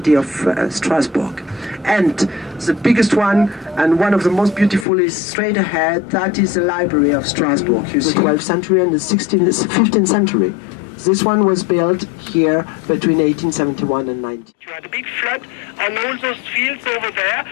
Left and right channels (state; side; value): drops out; right; at 4.9 s